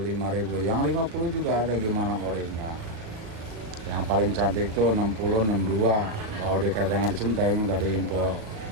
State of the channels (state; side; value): late; left; 37 ms